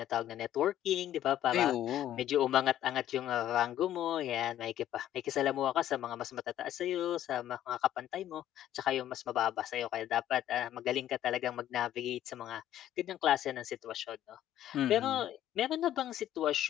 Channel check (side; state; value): right; quieter; 12.1 dB